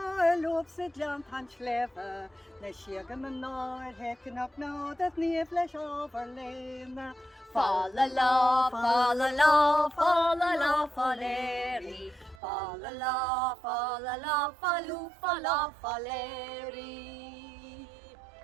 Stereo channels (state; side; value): drops out; left; at 12.4 s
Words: lob sa dean tan sléfa, le siagam an náir hecin ap nád at níomh leis ábhar léna. Fa la la, fa la la, fa la la, faléri. Fa la la, fa la la, falú, fa la, faléri.